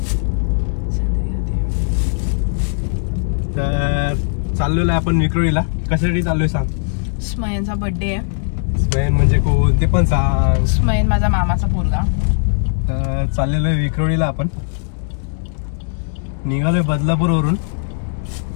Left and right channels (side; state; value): right; silent; 67 dB below the other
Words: तर चाललेलो आहे आपण विक्रोळीला। कशासाठी चाललोय सांग? स्मयनचा बर्थडे आहे। स्मयन म्हणजे कोण ते पण सांग। स्मयन माझा मामाचा पोरगा। तर चाललेलो आहे विक्रोळीला आपण, निघालोय बदलापूरवरून।